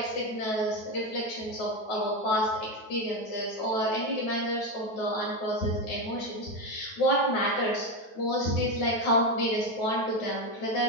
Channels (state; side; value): late; right; 9.3 ms